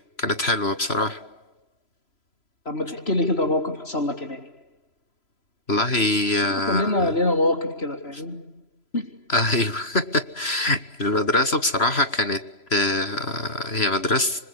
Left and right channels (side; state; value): right; late; 3.0 ms